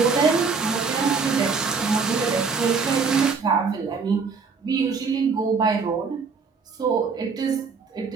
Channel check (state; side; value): quieter; left; 5.1 dB